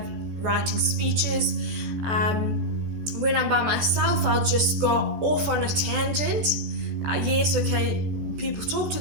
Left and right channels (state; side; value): late; left; 14 ms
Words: writing speeches. When I'm by myself, I'll just go off on a tangent. Yes, okay, people talk to